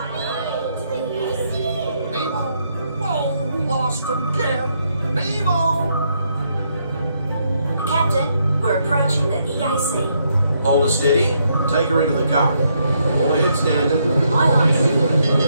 me to the EAC. Nemo! Oh, lost again! Nemo! Captain, we're approaching the EAC. Hold her steady, take her into the current. All ahead standard. Aye, aye.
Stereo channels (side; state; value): both; inverted; correlation -0.75